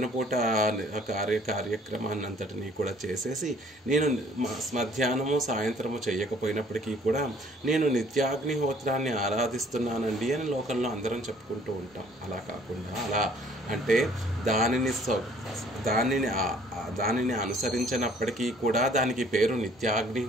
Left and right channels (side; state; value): both; normal; correlation 0.58